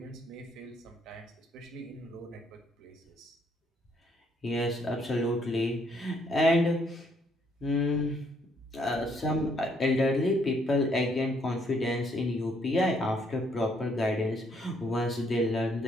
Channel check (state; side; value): normal; both; correlation 0.69